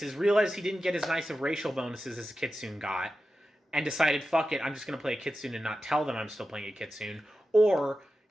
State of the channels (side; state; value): both; normal; correlation 0.92